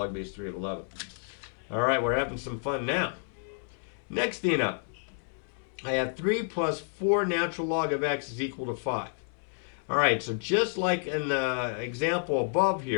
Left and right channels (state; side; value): silent; right; 58 dB below the other